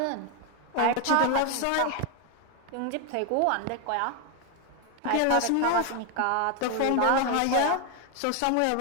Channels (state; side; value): different; both; correlation 0.01